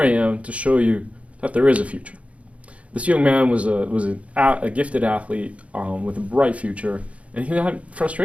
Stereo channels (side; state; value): left; late; 0.064 ms